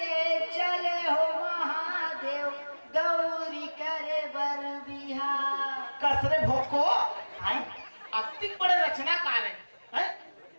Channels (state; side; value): inverted; both; correlation -1.00